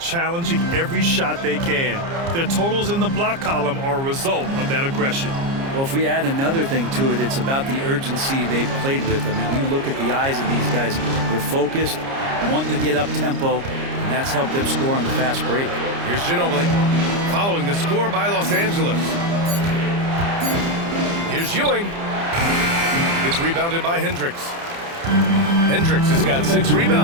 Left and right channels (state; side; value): late; left; 30 ms